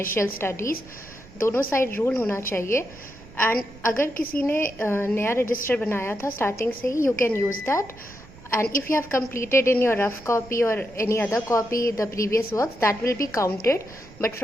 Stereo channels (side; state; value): right; noise; rumble, 21 dB below the sound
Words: studies. दोनों side rule होना चाहिए. And अगर किसी ने नया register बनाया था starting से ही, you can use that. And if you have completed in your rough copy or any other copy the previous works, that will be counted. But